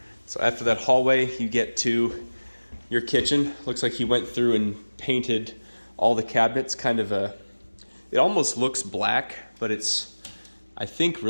So after that hallway, you get to your kitchen. Looks like he went through and painted all the cabinets. It almost looks black, but it's, I think,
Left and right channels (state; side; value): inverted; both; correlation -1.00